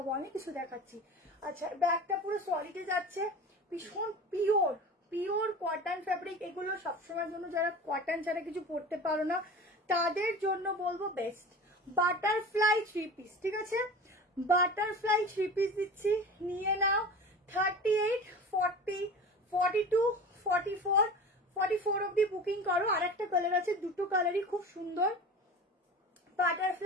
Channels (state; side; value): normal; both; correlation 0.35